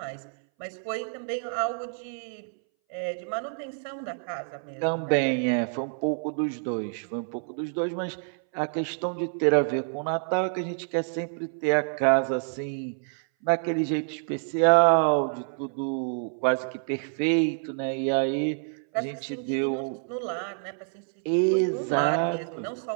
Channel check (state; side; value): silent; left; 60 dB below the other